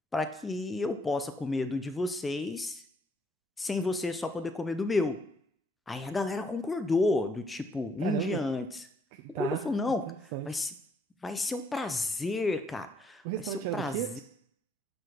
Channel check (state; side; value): normal; both; correlation 0.70